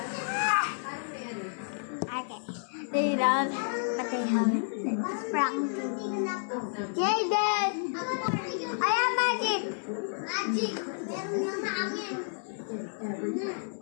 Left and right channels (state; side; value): silent; right; 57 dB below the other